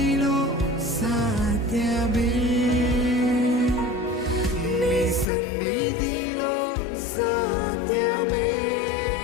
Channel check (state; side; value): drops out; right; at 5.2 s